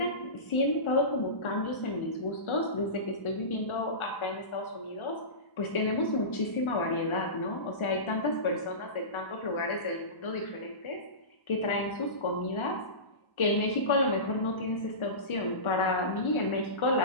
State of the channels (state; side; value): late; right; 1.4 ms